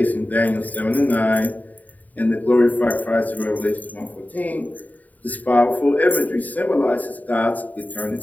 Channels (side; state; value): right; late; 0.077 ms